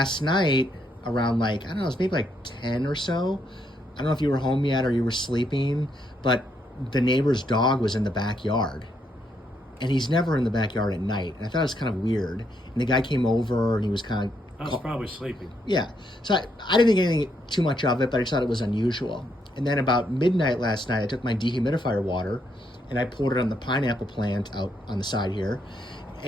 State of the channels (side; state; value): both; normal; correlation 0.76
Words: night, around like, I don't know, it was maybe like 10 or so. I don't know if you were home yet or you were sleeping, but the neighbor's dog was in the backyard. And he's never in the backyard at night. And I thought it was kind of weird. And the guy came over and he was kind of... I was probably sleeping. Yeah. So I didn't think anything too much of it, but I just thought it was unusual. And then about midnight last night, I took my dehumidifier water and I poured it on the pineapple plant out on the side here.